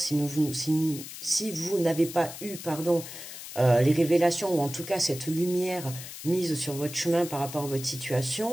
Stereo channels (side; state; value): left; noise; hiss, 11 dB below the sound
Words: vous n'avez pas eu, les révélations, ou en tout cas cette lumière mise sur votre chemin par rapport à votre